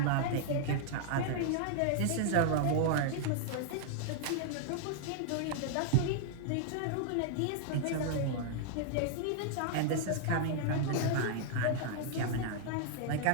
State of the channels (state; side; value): different; both; correlation -0.01